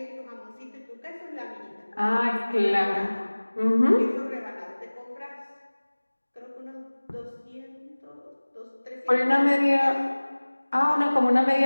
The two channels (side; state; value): both; inverted; correlation -1.00